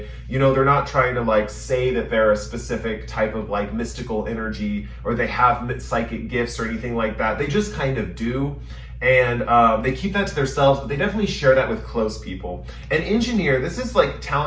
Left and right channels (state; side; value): identical; both; correlation 1.00